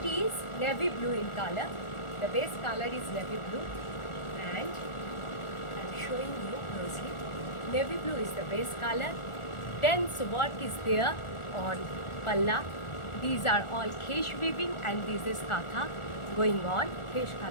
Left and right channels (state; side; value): late; right; 1.4 ms